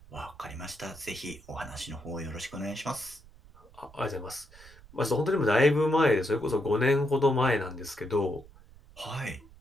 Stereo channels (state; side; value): noise; right; rumble, 23 dB below the sound